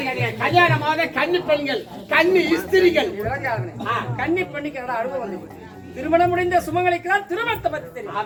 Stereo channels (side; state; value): both; identical; correlation 1.00